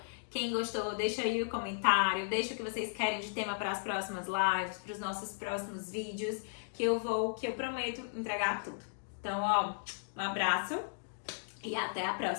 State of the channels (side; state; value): right; silent; digital silence